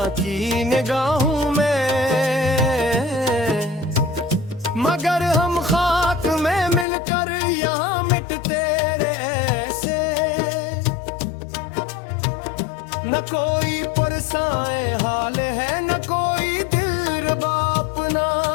की निगाहों में, मगर हम खाक में मिलकर यहाँ मिटते रहे से। न कोई पुरसाए हाल है न कोई दिलरुबा अपना,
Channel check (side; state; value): right; drops out; at 6.9 s